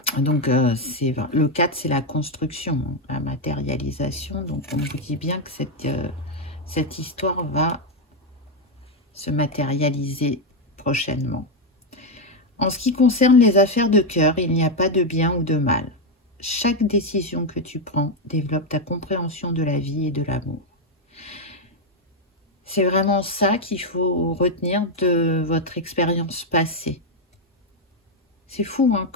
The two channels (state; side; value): normal; both; correlation 0.04